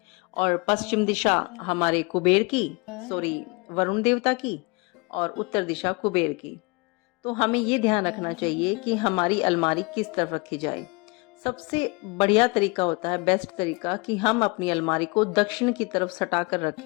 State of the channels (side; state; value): right; quieter; 28.0 dB